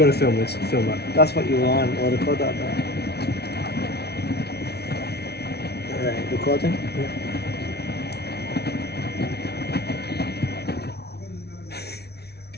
to film this. Film that. That's what you want. We'll record that back. Right, recording.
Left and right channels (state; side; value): late; right; 0.48 ms